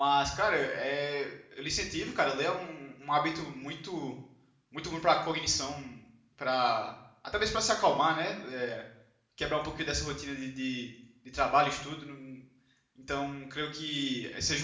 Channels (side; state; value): both; identical; correlation 1.00